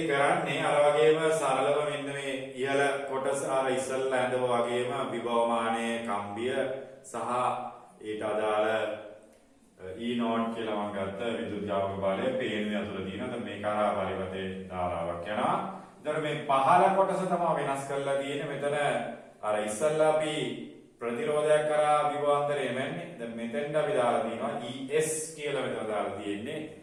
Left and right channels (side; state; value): both; identical; correlation 1.00